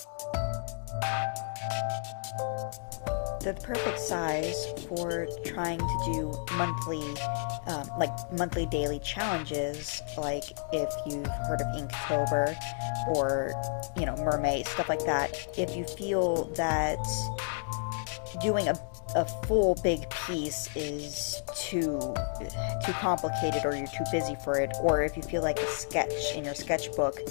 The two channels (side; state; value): right; silent; digital silence